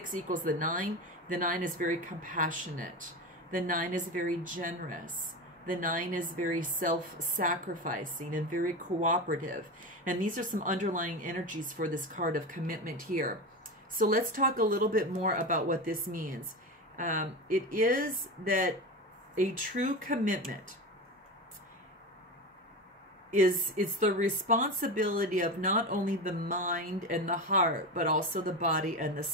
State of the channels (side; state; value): both; normal; correlation 0.23